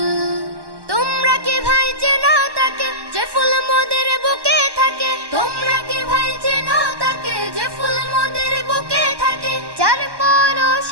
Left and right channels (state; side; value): late; left; 1.1 ms